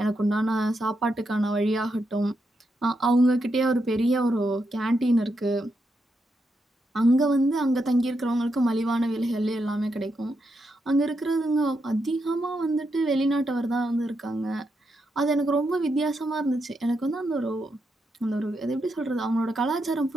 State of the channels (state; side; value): normal; both; correlation 0.83